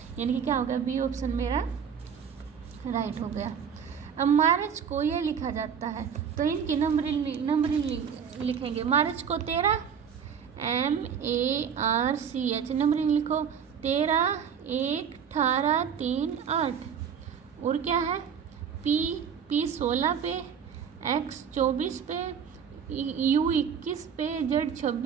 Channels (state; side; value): quieter; left; 7.4 dB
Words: यानी कि क्या हो गया? बी ऑप्शन मेरा राइट हो गया। अब मार्च को ये लिखा जाता है, तो इनकी नंबरिंग लिखेंगे। मार्च को 13 MARCH, नंबरिंग लिखो 13 1 18 3 8, और क्या है? P 16 पे, X 24 पे, U 21 पे, Z